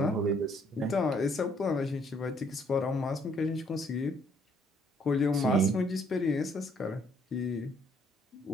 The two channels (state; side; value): normal; both; correlation 0.66